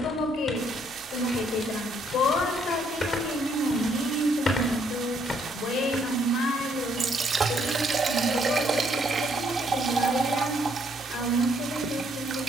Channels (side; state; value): both; normal; correlation 0.69